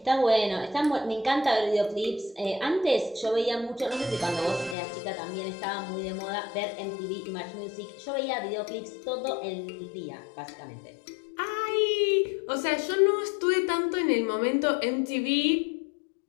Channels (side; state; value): right; drops out; at 4.8 s